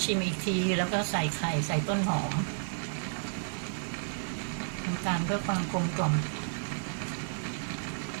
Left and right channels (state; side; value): silent; left; 57 dB below the other